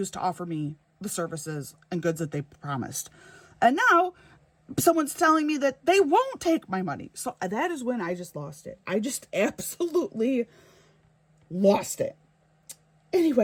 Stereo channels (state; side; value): identical; both; correlation 1.00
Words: to offer me the services and goods that they promised. And now someone's telling me that they won't take my money. So that is when I just lost it. I just absolutely lost it.